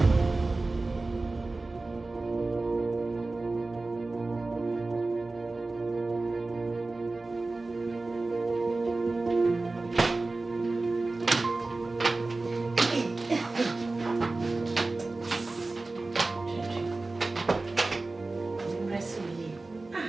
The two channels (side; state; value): left; quieter; 3.3 dB